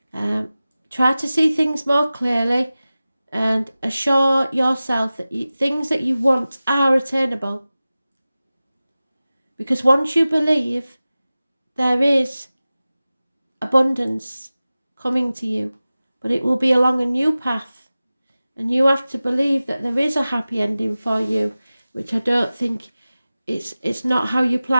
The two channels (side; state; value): both; inverted; correlation -0.97